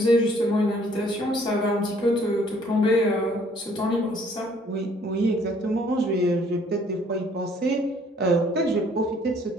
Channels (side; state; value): both; normal; correlation 0.61